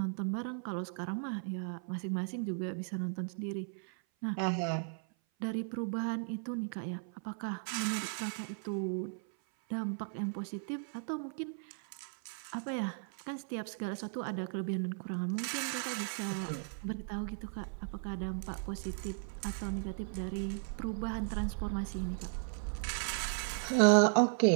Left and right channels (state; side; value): silent; left; 54 dB below the other